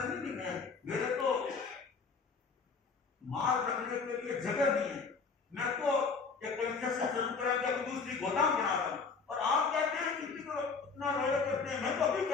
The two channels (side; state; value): right; quieter; 5.0 dB